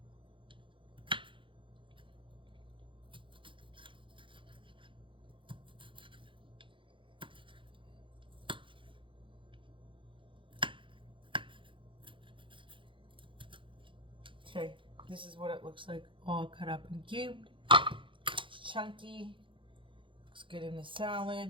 Okay, this is what it looks like, all cut up and cubed. It's chunky, looks good in the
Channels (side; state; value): left; late; 0.25 ms